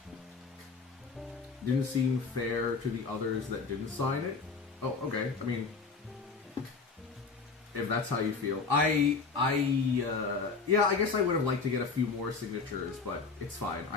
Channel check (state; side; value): quieter; right; 4.6 dB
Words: Didn't seem fair to the others that didn't sign it. Oh, okay. I mean, if that's how you feel. Yeah, I guess I would have liked to get a few more signatures, but it's fine.